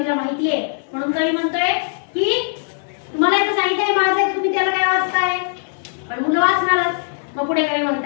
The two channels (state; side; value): silent; right; digital silence